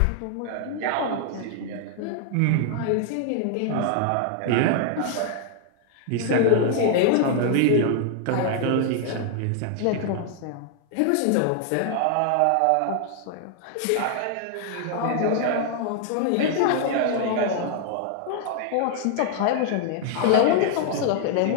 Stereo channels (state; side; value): different; both; correlation 0.00